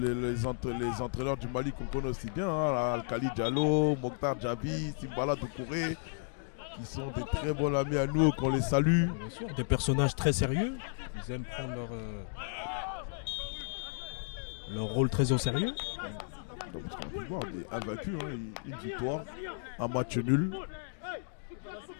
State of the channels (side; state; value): right; silent; digital silence